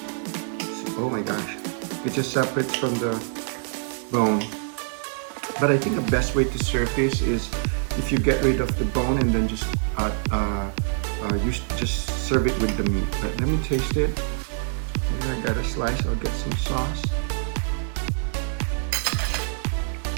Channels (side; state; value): left; silent; digital silence